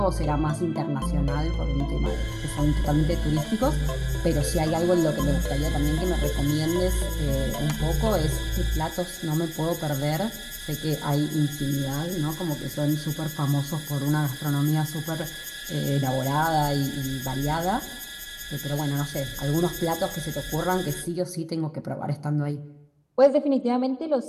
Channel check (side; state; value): both; identical; correlation 1.00